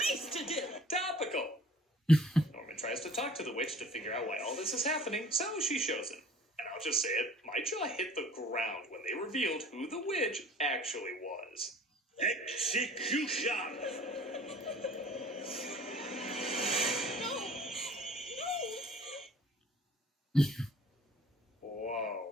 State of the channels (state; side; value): normal; both; correlation 0.49